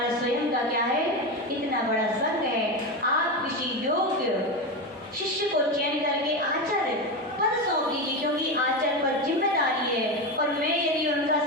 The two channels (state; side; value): normal; both; correlation 0.17